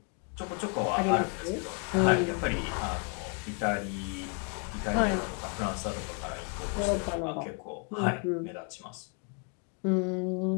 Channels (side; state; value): right; quieter; 37.8 dB